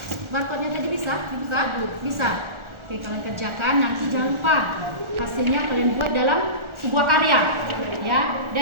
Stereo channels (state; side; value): late; left; 1.4 ms